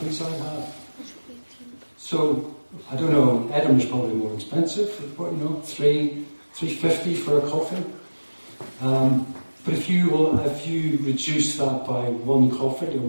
I have. So, I don't know, Edinburgh's probably more expensive, but $3.50 for a coffee. But if you reduce that by one coffee a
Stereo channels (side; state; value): both; inverted; correlation -1.00